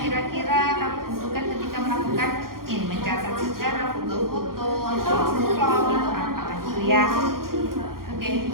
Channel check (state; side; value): late; left; 0.92 ms